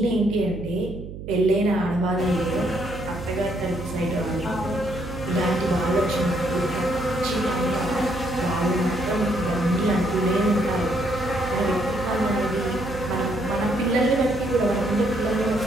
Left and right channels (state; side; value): noise; right; hum, 11 dB below the sound